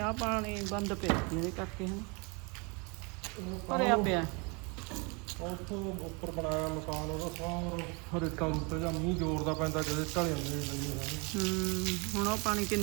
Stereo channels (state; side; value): quieter; left; 30.9 dB